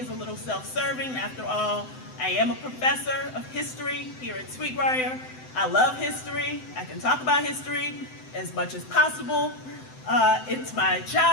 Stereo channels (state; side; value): late; right; 7.8 ms